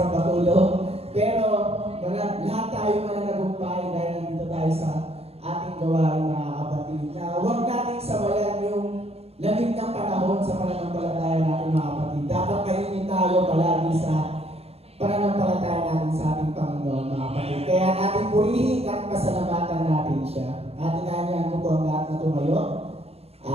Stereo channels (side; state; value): left; late; 0.29 ms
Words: matulog, pero lahat tayo mananagumpay dahil nandito tayo sa ating gawain, mga kapatid. Na huwag nating sabayan yung lamig ng panahon sa pananampalataya natin, mga kapatid. Dapat kainin tayo palagi sa pananampalataya natin sa ating Panginoon, mga kapatid. Kaya natin purihin at pasalamatan natin siya. At inanyahan ko po ang lahat na tumayo.